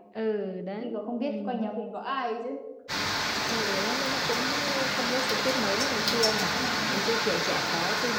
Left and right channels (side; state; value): both; identical; correlation 1.00